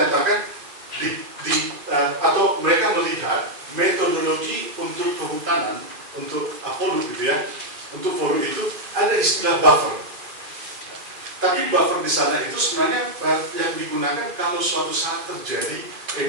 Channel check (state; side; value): late; left; 2.5 ms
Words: atau mereka melihat metodologi untuk kehutanan, untuk Apollo gitu ya, untuk Apollo itu ada istilah buffer. Tapi buffer di sana itu sebenarnya yang digunakan kalau suatu saat terjadi